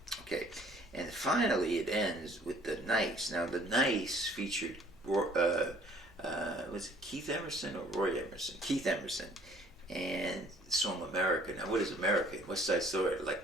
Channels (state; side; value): normal; both; correlation 0.57